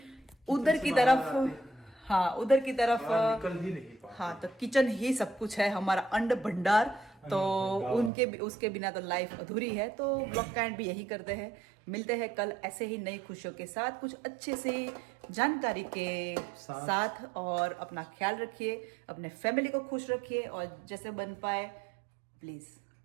उधर की तरफ, हाँ उधर की तरफ, निकल ही नहीं पाते। हाँ, तो किचन ही सब कुछ है, हमारा अन्न भंडार, तो उनके उसके बिना तो लाइफ अधूरी है। तो ब्लॉग का एंड भी यही करते हैं। मिलते हैं कल ऐसे ही नई खुशियों के साथ, कुछ अच्छे से जानकारी के साथ, और अपना ख्याल रखिए, अपने फैमिली को खुश रखिए, और जैसे बन पाए प्लीज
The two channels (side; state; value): left; drops out; at 8.1 s